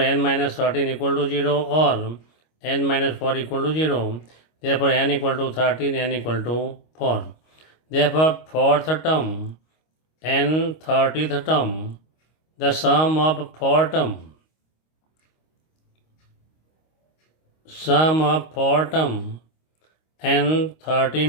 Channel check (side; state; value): right; late; 25 ms